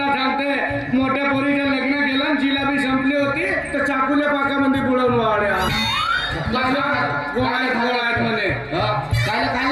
सांगते मोठ्या पोरीचं लग्न केलं आणि जिलाबी संपली होती तर चाकूल्या पाकामध्ये बुडवून वाड्या गोळ्यात म्हणे. काय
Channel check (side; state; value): both; identical; correlation 1.00